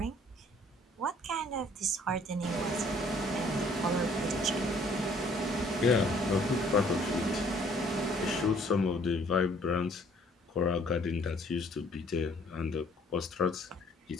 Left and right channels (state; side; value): normal; both; correlation 0.59